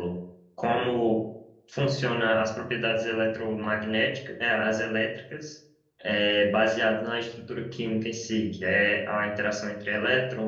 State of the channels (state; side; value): identical; both; correlation 1.00